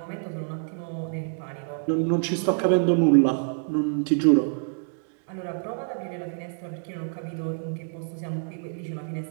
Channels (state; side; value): silent; left; digital silence